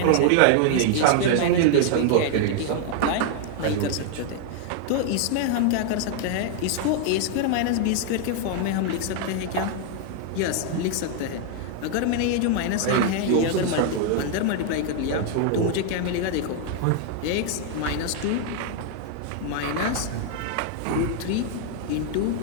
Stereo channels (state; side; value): different; both; correlation 0.00